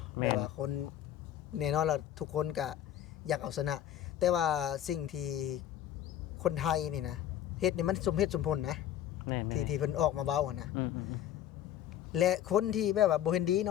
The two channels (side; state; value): right; quieter; 11.3 dB